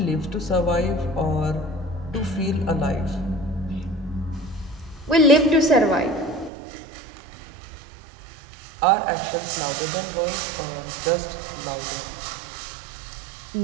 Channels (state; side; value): drops out; left; at 6.5 s